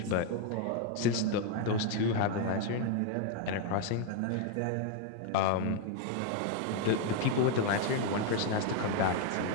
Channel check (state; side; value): different; both; correlation 0.00